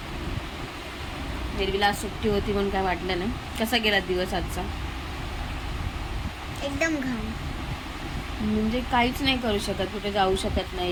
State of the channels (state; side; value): identical; both; correlation 1.00